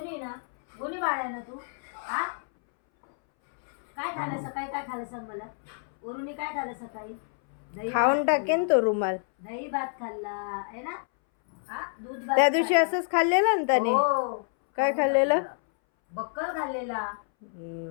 ना? गुन्ही बाळ आहे ना तू? हा काय खाल्लं सकाळी? काय खाल्लं सांग मला. वरुणी काय खाल्लं सकाळी? दही खाऊन टाकेन तो रुमाल. दही भात खाल्ला आहे ना? हा दूध भात त्या दिवशी खाल्ला. असंच खाल्लेलं ना त्याने. हो. काय खाल्लेलं? बक्कल खाल्लेला.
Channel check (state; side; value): silent; right; 59 dB below the other